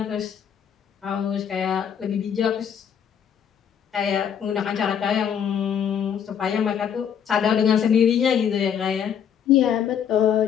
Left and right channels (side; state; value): right; quieter; 8.3 dB